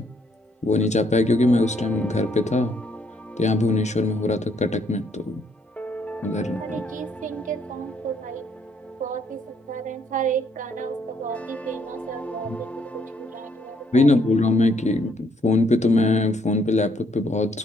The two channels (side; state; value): both; normal; correlation 0.69